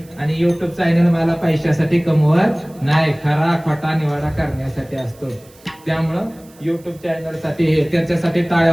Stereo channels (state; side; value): noise; right; hiss, 27 dB below the sound